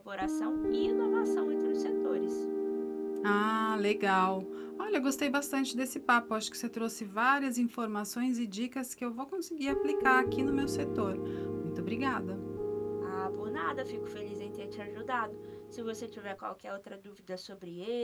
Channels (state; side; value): identical; both; correlation 1.00